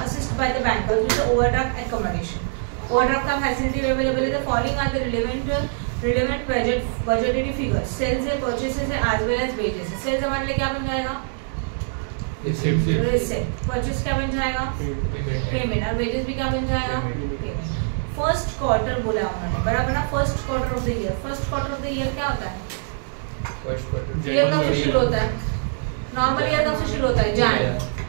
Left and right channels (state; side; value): silent; left; 63 dB below the other